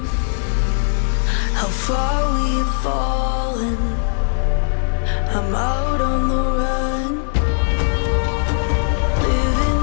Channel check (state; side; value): silent; right; 61 dB below the other